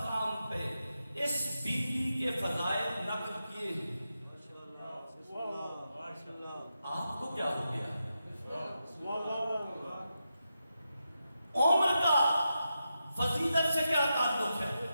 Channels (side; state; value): both; inverted; correlation -0.88